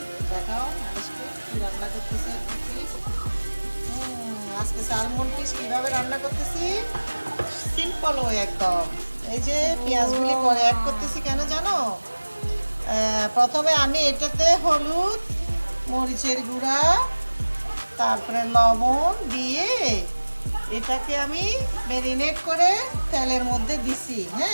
দেখাও আজকে কি রান্না করতেছি। আজকে স্যালমন ফিশ কিভাবে রান্না করতেছি? সিম্পল ওয়ে একদম। এই যে পেঁয়াজগুলি পরে অ্যাড করতেছি কেন জানো? প্রথমে আমি এটাতে হলুদ, মরিচের গুঁড়া, তারপরে লবণ দিয়ে এটাকে আমি ম্যারিনেট করে তেলের মধ্যে দিছি,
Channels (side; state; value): both; inverted; correlation -1.00